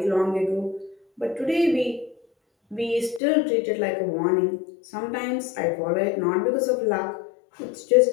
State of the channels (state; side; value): drops out; right; at 3.2 s